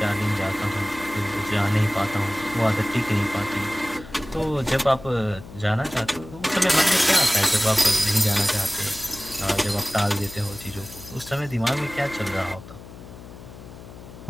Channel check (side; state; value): left; noise; hum, 16 dB below the sound